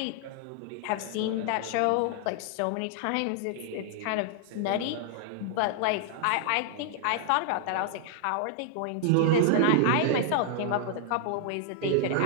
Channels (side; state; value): both; different; correlation 0.00